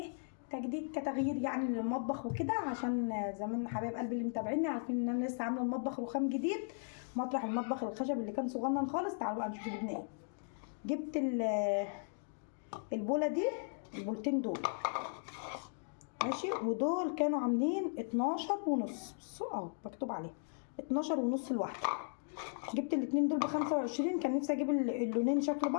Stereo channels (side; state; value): right; silent; digital silence